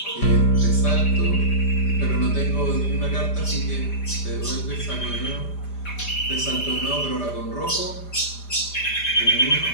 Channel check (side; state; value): right; late; 5.0 ms